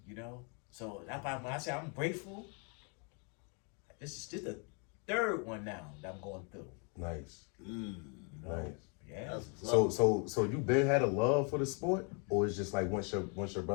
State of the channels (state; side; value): quieter; right; 37.0 dB